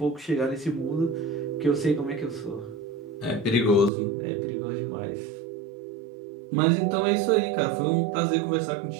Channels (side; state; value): left; drops out; at 3.9 s